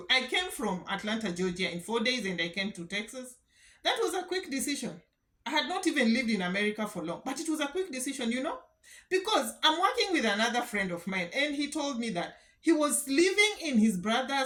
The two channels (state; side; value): identical; both; correlation 1.00